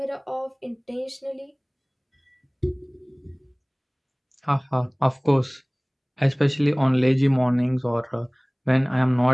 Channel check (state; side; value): identical; both; correlation 1.00